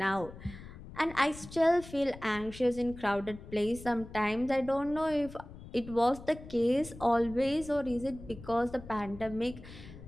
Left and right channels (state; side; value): noise; left; rumble, 15 dB below the sound